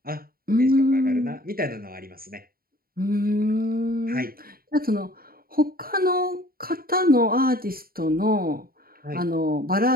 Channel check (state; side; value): late; left; 0.43 ms